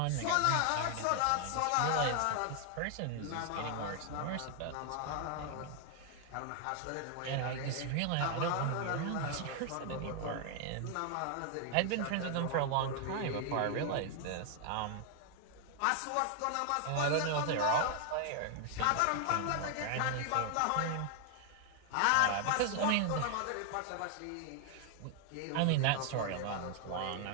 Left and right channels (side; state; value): both; different; correlation 0.00